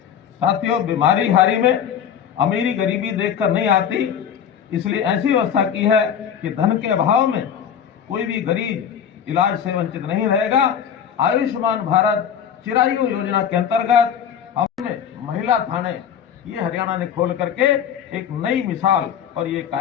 साथियों, बीमारी हारी में अमीरी गरीबी देखकर नहीं आती, इसलिए ऐसी व्यवस्था की है कि धन के अभाव में कोई भी गरीब इलाज से वंचित नहीं रहेगा। आयुष्मान भारत चिरायु योजना के अंतर्गत हमने महिला थाने ये हरियाणा ने खोल करके एक नई मिसाल और ये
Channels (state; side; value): quieter; right; 8.5 dB